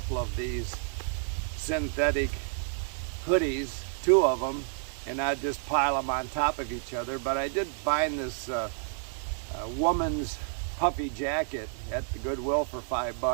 of these synthetic hoodies, 2 of them, and I'd just pile them on top of each other. But I did find this woman's puffy jacket at the Goodwill for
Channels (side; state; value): left; silent; digital silence